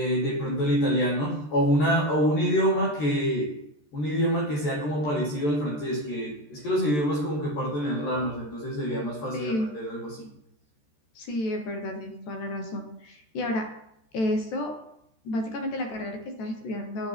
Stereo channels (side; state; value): right; late; 14 ms